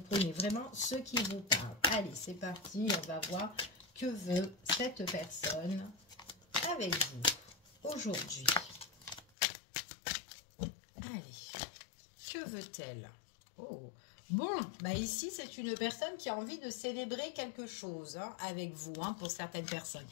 prenez vraiment ce qui vous parle. Allez, c'est parti, on va voir que veut cette personne avec vous aujourd'hui. Allez, que veut-elle? Oh, bon, bah ici, c'est une personne qui a envie de célébrer quelque chose avec vous, pour certaines personnes.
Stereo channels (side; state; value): right; drops out; at 9.2 s